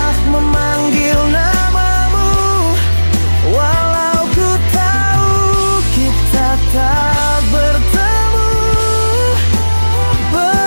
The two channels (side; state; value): both; inverted; correlation -1.00